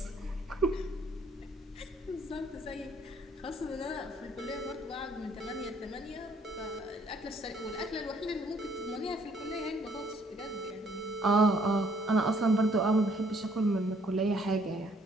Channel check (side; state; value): both; normal; correlation 0.64